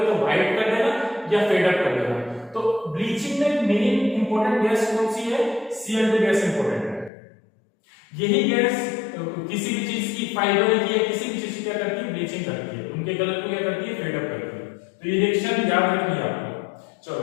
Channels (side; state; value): right; drops out; at 7.1 s